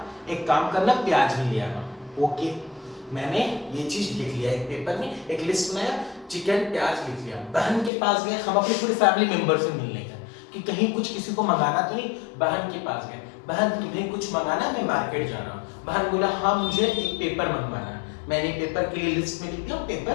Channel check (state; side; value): drops out; right; at 7.9 s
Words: एक काम करना, प्याज भी ले आना। ओके, मैंने ये चीज लिख लिया, एक पेपर में एक लिस्ट बनाया, चिकन प्याज लिख लिया। बहन के पास गए, हम अपनी पूरी फैमिली मेंबर से मिलने गए कि कहीं कुछ किसी को मंगाना तो नहीं। बहन के पास गए, बहन तुम्हें कुछ मंगाना, मैं मार्केट जा रहा हूँ। बहन बोला हाँ मुझे एक पेपर मंगवाना है। मैंने पेपर के लिए लिस्ट में लिख दिया,